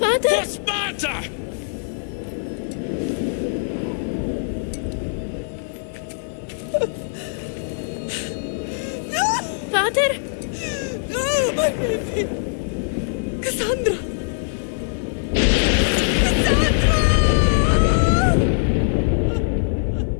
For Sparta! Pater! No, my baby! Cassandra! Cassandra!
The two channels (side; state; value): right; silent; digital silence